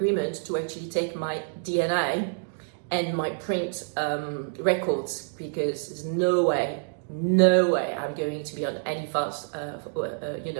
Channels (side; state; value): left; silent; digital silence